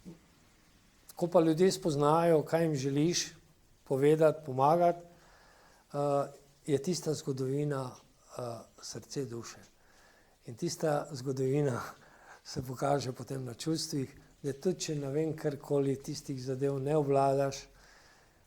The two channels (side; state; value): both; identical; correlation 1.00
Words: ko pa ljudje spoznajo, kaj jim želiš povedati, pomagati, je tista zgodovina srce duše. In tista zgodovina se pokaže potem na čustvih, da tudi če ne vem karkoli tistih zadev ne obvladaš,